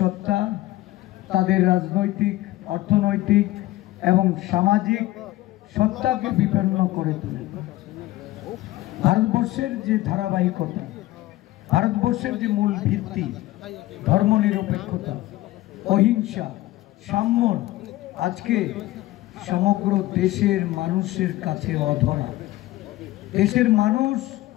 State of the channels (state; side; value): quieter; right; 16.9 dB